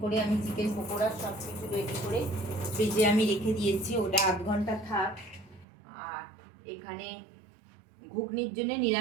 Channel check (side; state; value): left; drops out; at 5.7 s